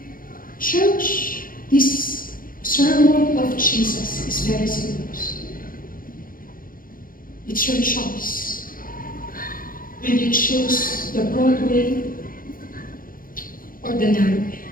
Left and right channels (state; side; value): late; right; 0.41 ms